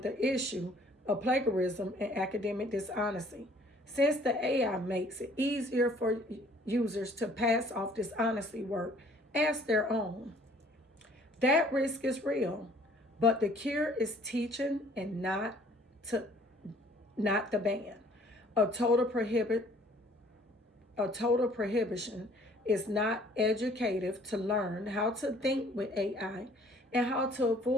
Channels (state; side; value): normal; both; correlation 0.57